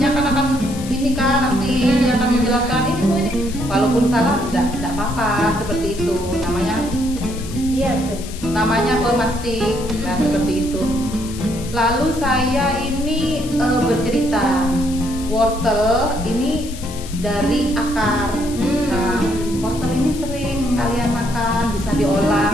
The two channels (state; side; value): noise; left; hiss, 15 dB below the sound